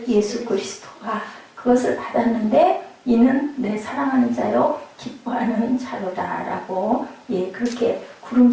예수 그리스도가 그것을 받았는데, 이는 내 사랑하는 자요 기뻐하는 자로다라고. 예, 그렇게 구름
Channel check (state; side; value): identical; both; correlation 1.00